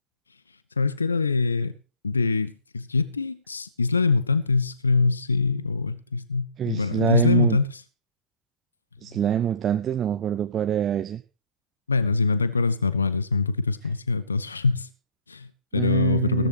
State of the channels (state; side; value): inverted; both; correlation -0.57